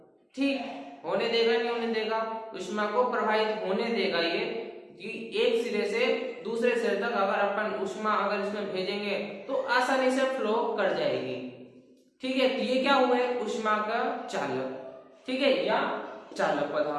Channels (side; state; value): both; identical; correlation 1.00